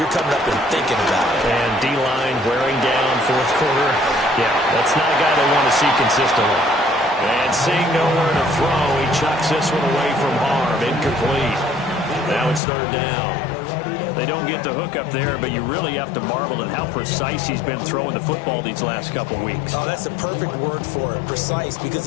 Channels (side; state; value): right; drops out; at 12.6 s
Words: coming up and thinking about it. And D-line wearing down fourth quarter. Yeah, that's not a guy they want to see consistently. And seeing nowhere to throw, he chucks this one away from harm. Incomplete. Now it's third down. They don't get the hook up there, but you really have to marvel at how precise he's been throwing the football these last couple weeks. Oh, that's the perfect word for it, precise,